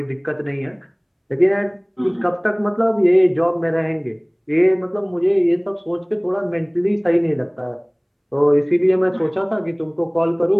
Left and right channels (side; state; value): both; identical; correlation 1.00